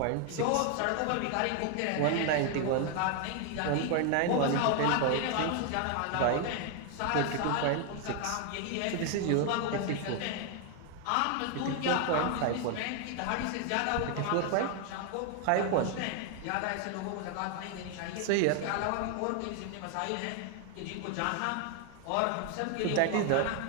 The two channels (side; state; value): both; different; correlation 0.01